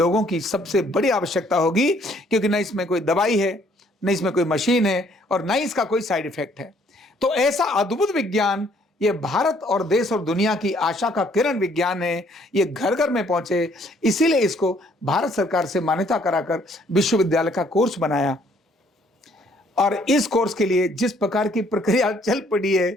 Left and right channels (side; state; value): both; normal; correlation 0.64